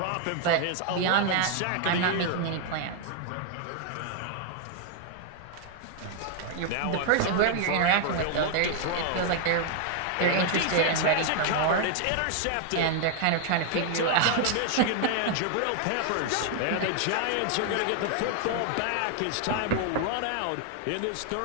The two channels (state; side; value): different; both; correlation 0.00